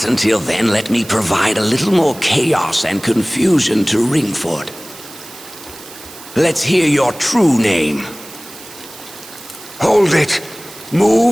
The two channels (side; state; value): right; noise; hiss, 17 dB below the sound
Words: until then, let me provide a little more chaos and confusion to Ringford. Let's hear your true name. Hold it.